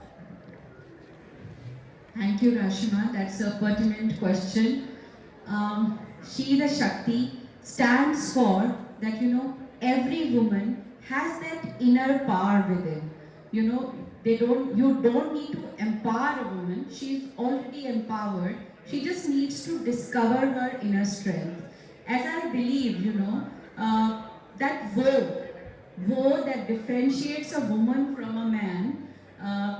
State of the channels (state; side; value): identical; both; correlation 1.00